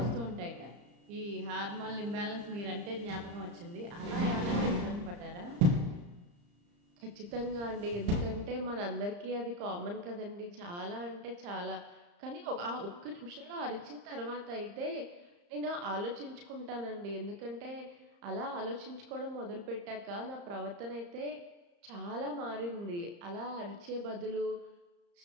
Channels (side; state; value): left; late; 34 ms